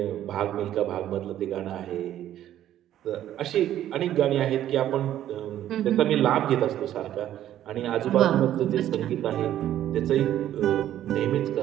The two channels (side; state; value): left; quieter; 12.0 dB